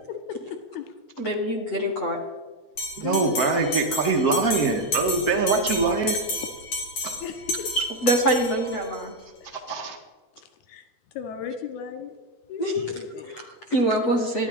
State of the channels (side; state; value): right; late; 8.5 ms